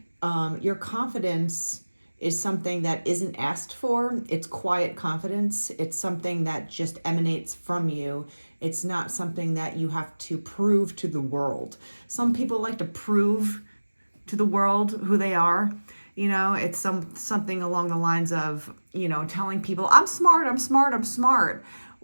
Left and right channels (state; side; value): inverted; both; correlation -1.00